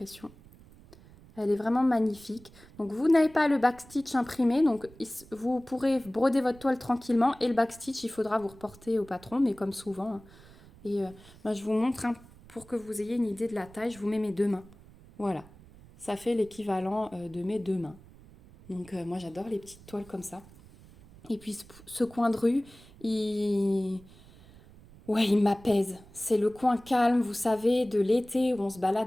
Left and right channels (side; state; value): right; noise; rumble, 22 dB below the sound